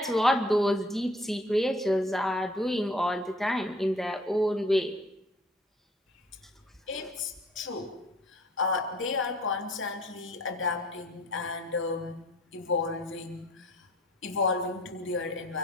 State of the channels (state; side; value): normal; both; correlation 0.54